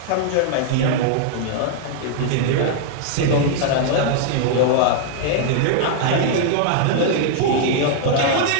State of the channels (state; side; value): different; both; correlation 0.00